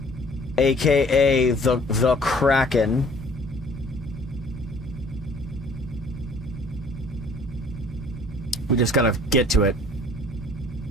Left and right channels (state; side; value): normal; both; correlation 0.54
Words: aka the Kraken. We just gotta get to it.